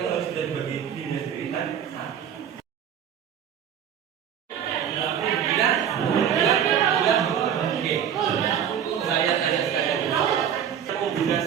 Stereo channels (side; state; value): left; quieter; 8.8 dB